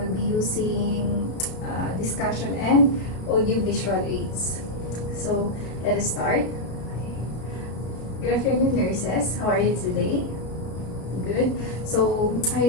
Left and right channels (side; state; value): right; late; 32 ms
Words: be using discussion and audio-visual aids. So let us start. Good afternoon, nurses. How are you today? Good. So I